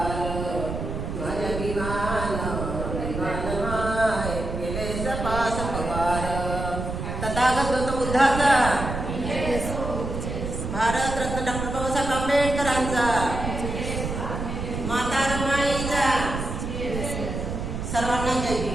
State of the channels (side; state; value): right; noise; rumble, 4 dB below the sound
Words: माझ्या विमान विमान माय केले सपास पवार तथागत गौतम बुद्धाचा भारतरत्न डॉ. बाबासाहेब आंबेडकरांचा